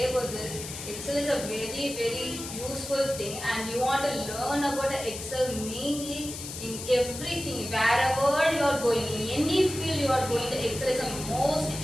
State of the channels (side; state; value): left; noise; hiss, 9 dB below the sound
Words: about this, Excel is a very useful thing, and you want to learn about Excel mainly in everything, wherever you are going, in any field you are going, the Excel is the most